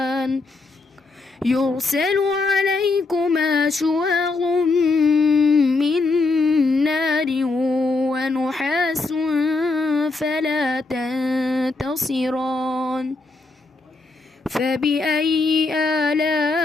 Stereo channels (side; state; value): right; quieter; 3.6 dB